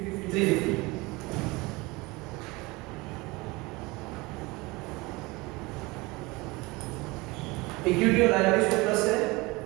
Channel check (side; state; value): left; quieter; 23.5 dB